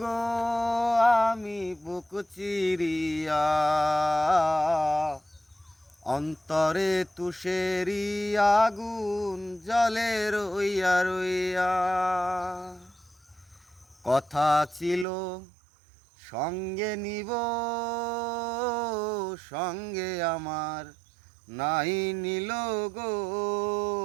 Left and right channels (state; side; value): drops out; left; at 15.1 s